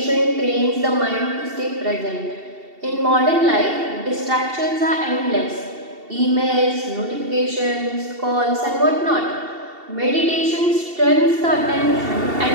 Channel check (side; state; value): left; late; 2.7 ms